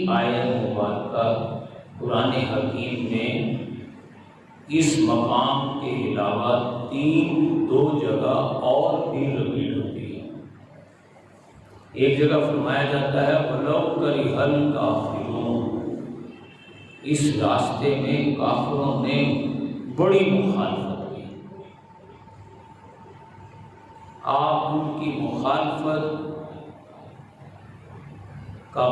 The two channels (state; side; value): identical; both; correlation 1.00